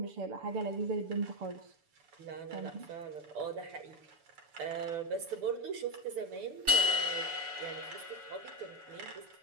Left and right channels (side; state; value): left; late; 6.9 ms